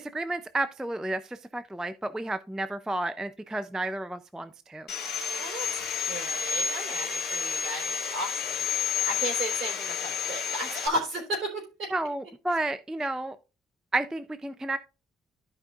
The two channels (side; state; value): both; normal; correlation 0.61